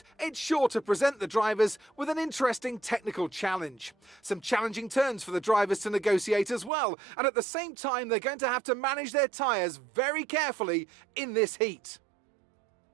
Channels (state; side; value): drops out; left; at 6.7 s